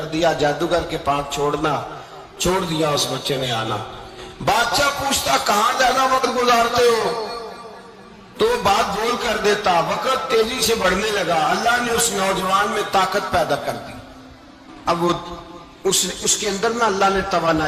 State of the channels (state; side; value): identical; both; correlation 1.00